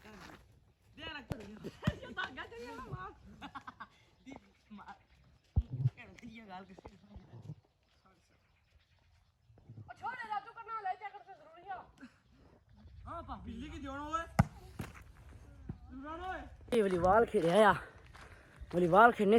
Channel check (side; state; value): both; identical; correlation 1.00